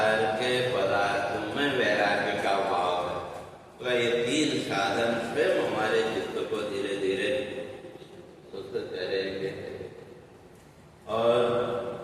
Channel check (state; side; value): identical; both; correlation 1.00